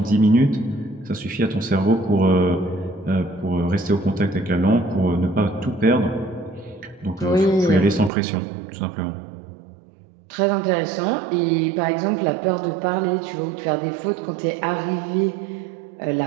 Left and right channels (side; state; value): left; drops out; at 8.1 s